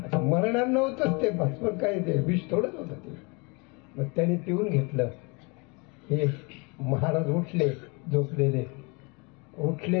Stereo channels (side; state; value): right; quieter; 30.1 dB